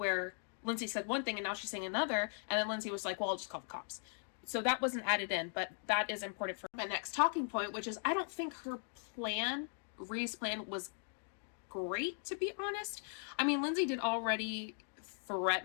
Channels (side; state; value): right; silent; 52 dB below the other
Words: Lindsay said one thing and now she's saying another. And then Lindsay was like, well, I'll just call the cops. So that wasn't added in, but that is important for my next talking point, which is I don't think her plan, Ree's plan, was great, to be honest. I mean, Lindsay did already